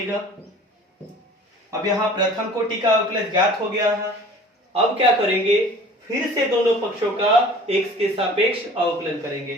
अब यहाँ प्रथम कोटि का अवकलज ज्ञात हो गया है। अब क्या करेंगे, फिर से दोनों पक्षों का x के सापेक्ष अवकलन करेंगे।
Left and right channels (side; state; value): both; normal; correlation 0.46